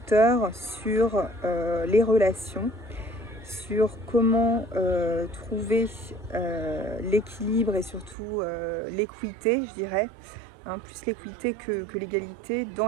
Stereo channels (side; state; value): left; drops out; at 8.2 s